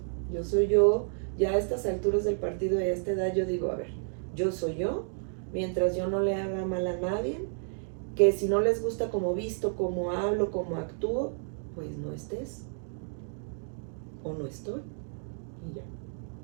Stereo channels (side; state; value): left; silent; digital silence